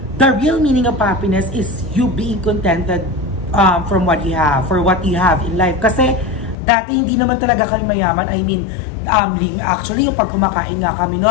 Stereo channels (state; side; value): drops out; right; at 6.6 s